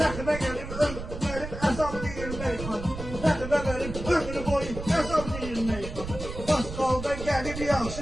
Rəxbə gəlib ömrüm əzab deyir meyxana. Rəxbə gəlib ömrü boyu əzab deyir meyxana. Qalda gəlib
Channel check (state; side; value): noise; right; rumble, 9 dB below the sound